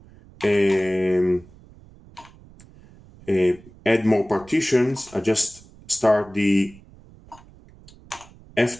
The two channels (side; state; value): right; noise; rumble, 24 dB below the sound